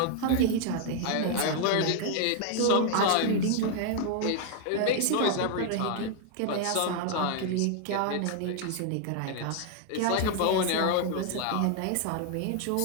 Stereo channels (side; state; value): both; different; correlation 0.00